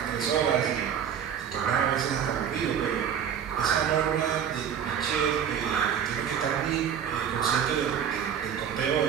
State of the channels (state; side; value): quieter; left; 8.4 dB